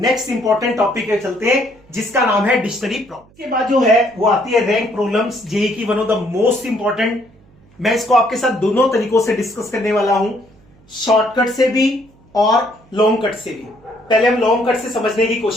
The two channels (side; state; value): right; noise; hum, 29 dB below the sound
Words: इंपॉर्टेंट टॉपिक पे चलते हैं, जिसका नाम है डिक्शनरी प्रॉब्लम। इसके बाद जो है वो आती है रैंक प्रॉब्लम्स, जेईई की one of the most important. मैं इसको आपके साथ दोनों तरीकों से डिस्कस करने वाला हूं, शॉर्टकट से भी और लॉन्ग कट से भी। पहले हम लॉन्ग कट से समझने की